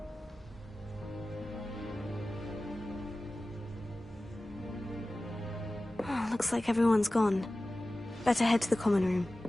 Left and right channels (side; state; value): both; normal; correlation 0.97